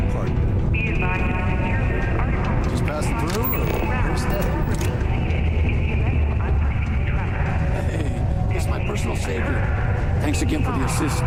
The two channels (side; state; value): both; identical; correlation 1.00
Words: Just passing through, or where's that? Hey, it's my personal savior. Thanks again for the assist.